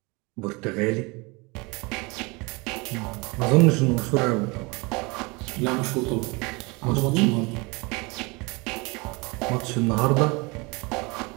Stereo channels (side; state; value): left; quieter; 26.8 dB